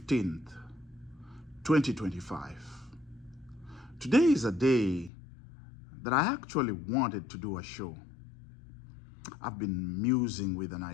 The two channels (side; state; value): right; drops out; at 5.1 s